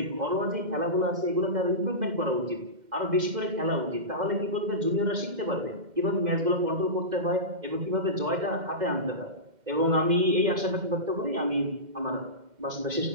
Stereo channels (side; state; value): left; late; 2.1 ms